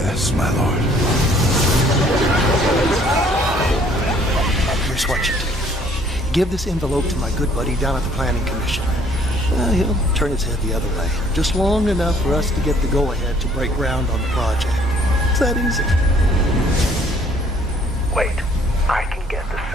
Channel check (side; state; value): both; normal; correlation 0.60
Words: my lord. Here's what you do. Give this envelope to my good buddy down at the Planning Commission. He'll turn his head the other way, just long enough for us to get the go-ahead to break ground on the project. that easy. Wait, I can get the